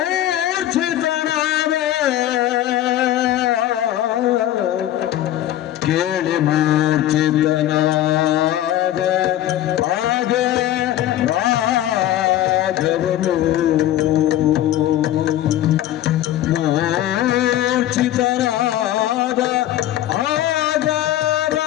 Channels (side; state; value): right; quieter; 13.1 dB